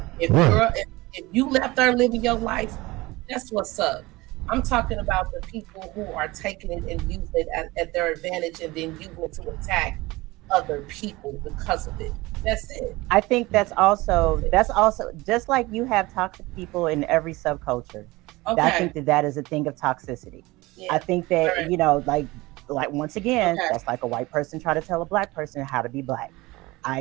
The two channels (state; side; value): quieter; left; 21.1 dB